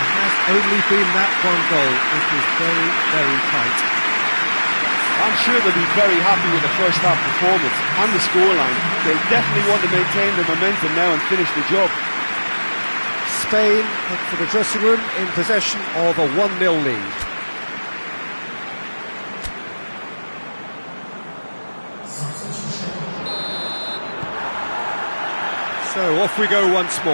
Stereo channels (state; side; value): inverted; both; correlation -1.00